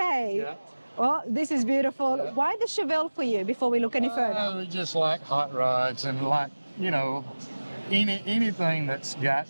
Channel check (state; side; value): inverted; both; correlation -1.00